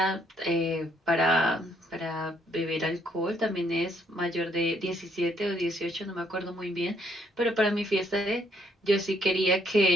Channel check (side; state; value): both; normal; correlation 0.69